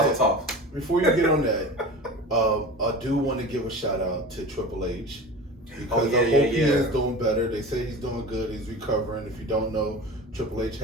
that, tov. before you get on that, I do want to give a shout out to Triple H because I hope he is doing better. They say he's doing good. He's recovering. If you don't know, Triple H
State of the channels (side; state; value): both; normal; correlation 0.33